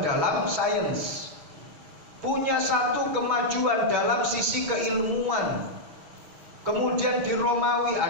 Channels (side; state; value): left; late; 6.2 ms